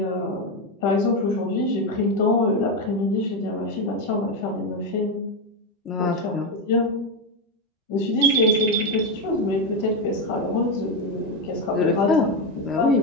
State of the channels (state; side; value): normal; both; correlation 0.09